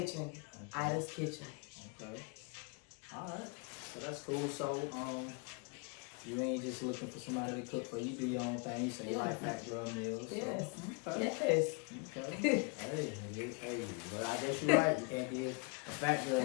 Ida's Kitchen. Okay. All right. So that's cool. So you ain't just looking for somebody to cook for you. Do your own thing. So you like fat girl meals. Yes. So. Okay. Yes. Okay. hey. Well, I guess you're right. You can't be a fat girl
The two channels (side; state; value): right; quieter; 33.6 dB